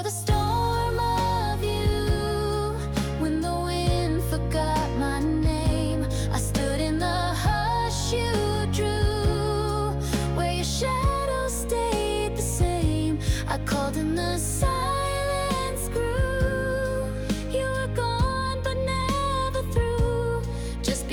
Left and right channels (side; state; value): both; identical; correlation 1.00